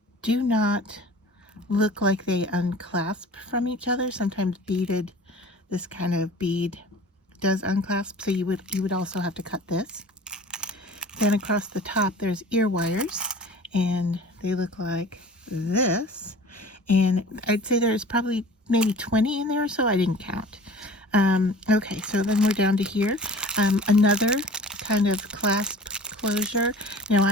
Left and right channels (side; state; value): both; normal; correlation 0.43